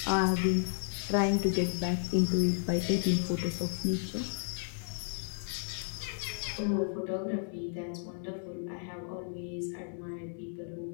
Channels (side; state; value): right; silent; digital silence